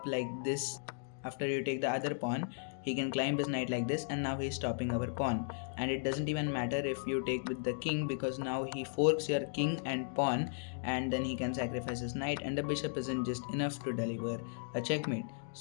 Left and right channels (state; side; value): silent; right; digital silence